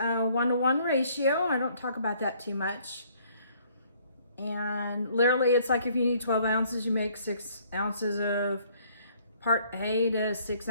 1-to-1 ratio. I don't talk about that too much. And literally it's like if you need 12 ounces, you make 6 ounces of part A to 6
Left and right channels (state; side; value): inverted; both; correlation -0.62